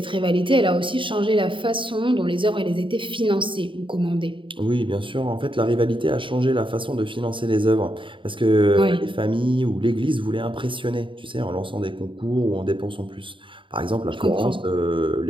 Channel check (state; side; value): late; left; 0.25 ms